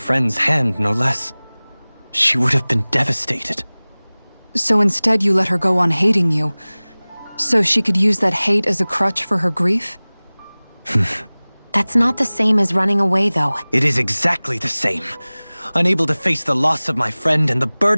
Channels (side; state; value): both; inverted; correlation -1.00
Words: hand, no less. She would have been devastated. So instead you let her go on hating you, so she could use that hate as a crutch for her grief? That's not the same as running away, though. It is exactly the same. Unable to face the loss of my friend and the